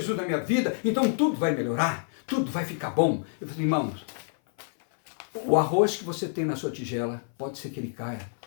na minha vida, então tudo vai melhorar, tudo vai ficar bom. Eu falei, irmãos, o arroz que você tem na sua tigela, pode ser que ele caia,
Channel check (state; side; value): silent; right; 57 dB below the other